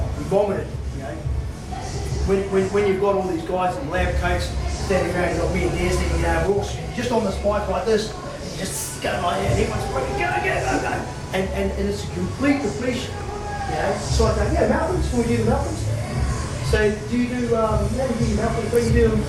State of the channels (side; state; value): both; identical; correlation 1.00